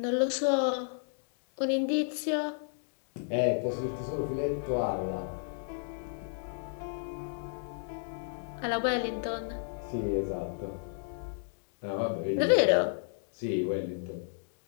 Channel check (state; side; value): silent; right; digital silence